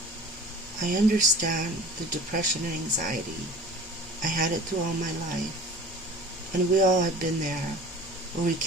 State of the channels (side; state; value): both; normal; correlation 0.41